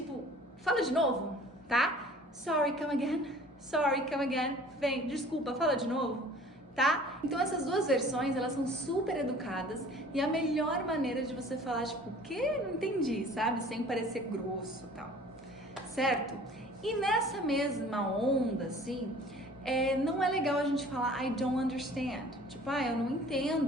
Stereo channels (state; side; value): normal; both; correlation 0.49